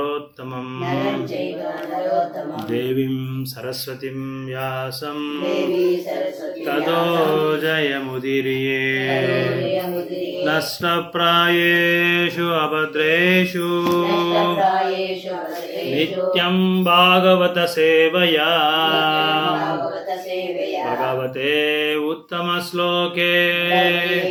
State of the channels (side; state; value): both; identical; correlation 1.00